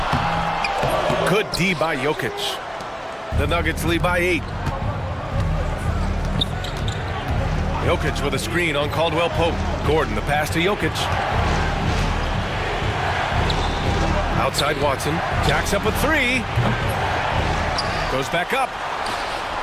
Good D by Jokic. The Nuggets lead by 8. Jokic with a screen on Caldwell Pope. Gordon, the pass to Jokic. Outside Watson. Jacks up with 3. Goes back up.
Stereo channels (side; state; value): both; identical; correlation 1.00